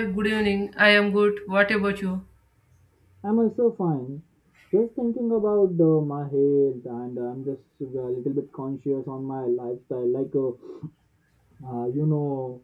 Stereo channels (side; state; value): both; identical; correlation 1.00